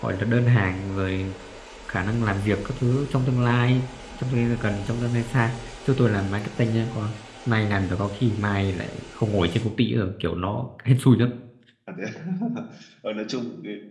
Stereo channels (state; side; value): identical; both; correlation 1.00